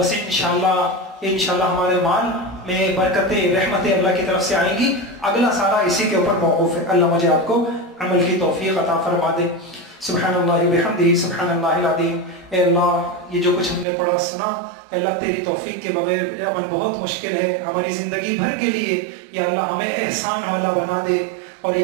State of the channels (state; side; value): drops out; left; at 13.9 s